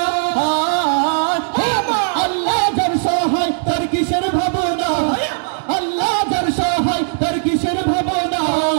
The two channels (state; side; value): silent; left; digital silence